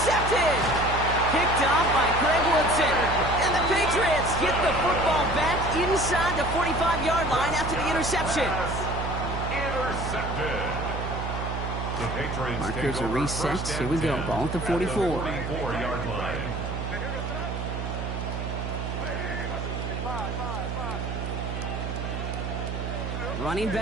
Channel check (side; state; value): right; noise; hum, 4 dB below the sound